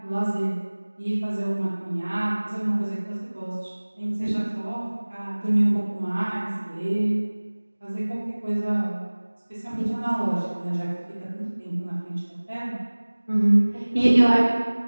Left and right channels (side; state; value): both; inverted; correlation -1.00